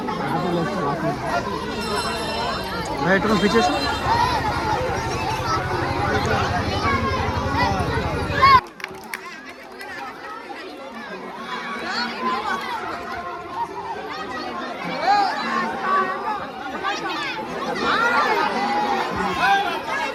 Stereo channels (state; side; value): identical; both; correlation 1.00